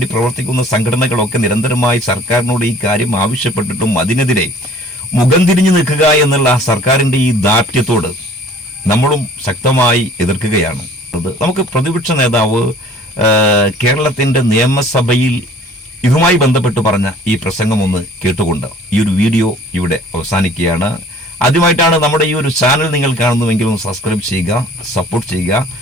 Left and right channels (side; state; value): both; normal; correlation 0.51